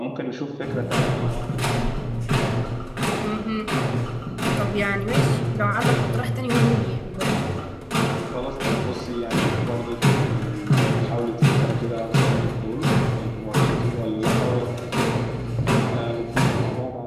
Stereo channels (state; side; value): identical; both; correlation 1.00